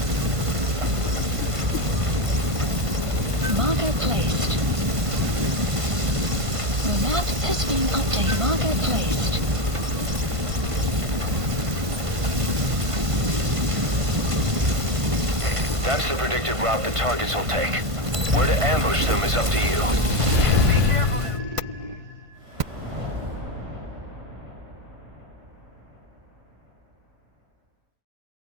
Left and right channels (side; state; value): left; late; 1.5 ms